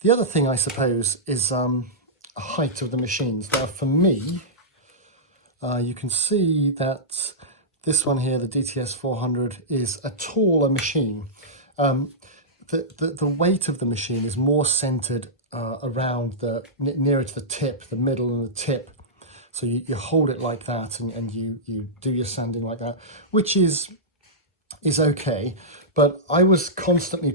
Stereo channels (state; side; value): normal; both; correlation -0.14